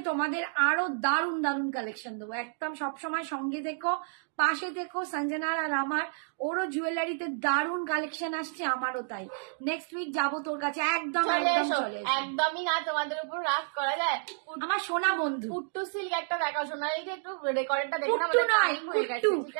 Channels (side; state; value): left; silent; digital silence